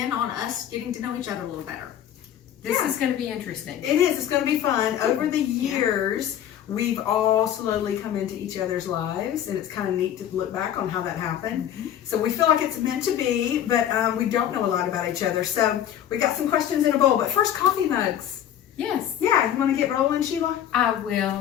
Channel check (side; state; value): right; quieter; 10.5 dB